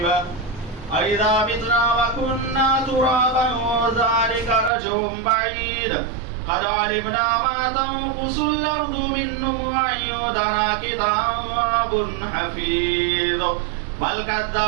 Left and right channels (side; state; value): left; drops out; at 4.7 s